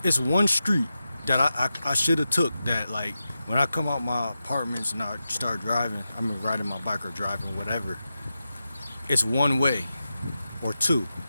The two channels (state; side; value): inverted; both; correlation -0.91